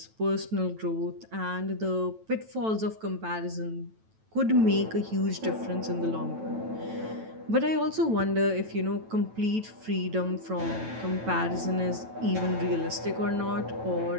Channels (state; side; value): late; left; 9.1 ms